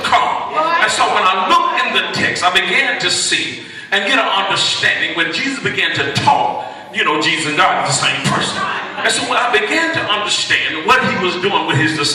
come. And so when I look in the text, I began to see and get an understanding. When Jesus began to talk, Jesus and God are the same person. And so when I began to understand what he was doing with his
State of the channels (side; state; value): both; identical; correlation 1.00